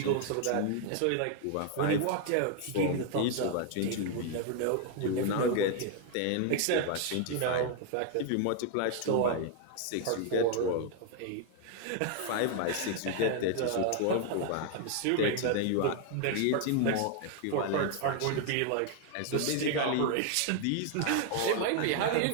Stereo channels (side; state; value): both; different; correlation 0.00